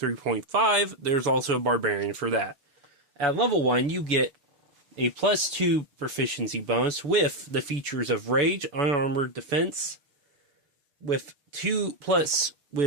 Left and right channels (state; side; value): late; left; 7.0 ms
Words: there's also a Barbarian for that. At level 1, you get a +2 proficiency bonus with the features of Rage, Unarmored Defense, with two